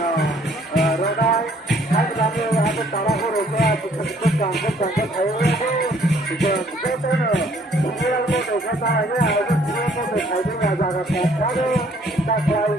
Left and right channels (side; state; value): both; normal; correlation 0.61